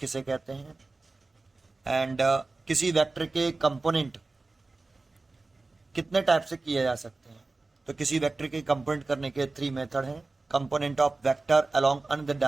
कहते हैं एंड किसी वेक्टर के कंपोनेंट कितने टाइप से किए जा सकते हैं। तो किसी वेक्टर के कंपोनेंट करने के 3 मेथड हैं। Component of vector along another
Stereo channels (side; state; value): left; quieter; 3.4 dB